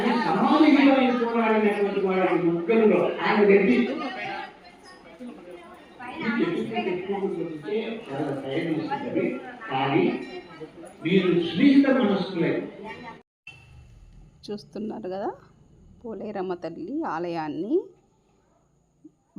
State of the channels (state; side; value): identical; both; correlation 1.00